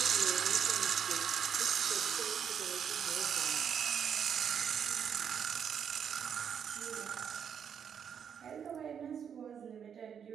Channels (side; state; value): left; quieter; 7.8 dB